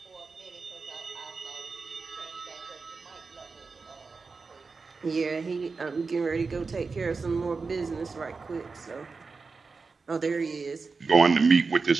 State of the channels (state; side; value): quieter; left; 4.5 dB